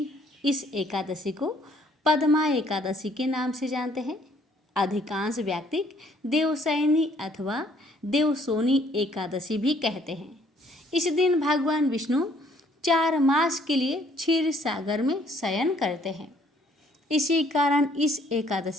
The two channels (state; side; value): normal; both; correlation 0.63